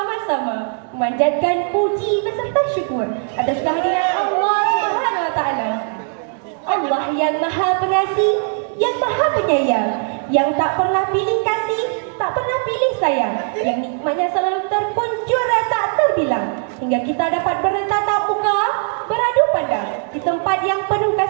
memanjatkan puji beserta syukur atas kehadiran Allah Subhanahu wa taala. Allah yang Maha Pengasih, yang Maha Penyayang, yang tak pernah pilih kasih, tak pernah pilih sayang, yang nikmatnya selalu terkuncur tak terbilang, hingga kita dapat bertatap muka, beradu pandang di tempat yang penuh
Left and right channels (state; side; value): silent; left; 57 dB below the other